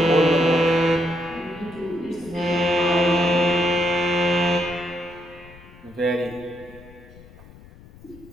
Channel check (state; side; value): noise; left; rumble, 22 dB below the sound